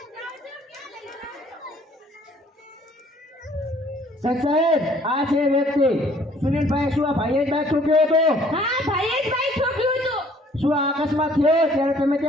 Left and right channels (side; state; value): both; normal; correlation 0.58